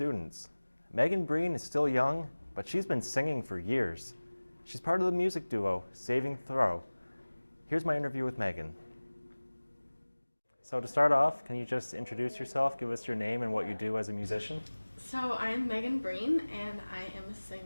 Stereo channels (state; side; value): inverted; both; correlation -1.00